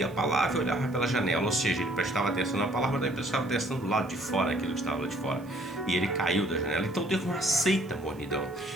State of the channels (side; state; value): right; noise; hiss, 27 dB below the sound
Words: a palavra e olhava pela janela, ou seja, ele prestava atenção na palavra, mas ele prestava atenção do lado de fora, aquilo que estava lá de fora, e ele caiu da janela. Então Deus não aceita mornidão,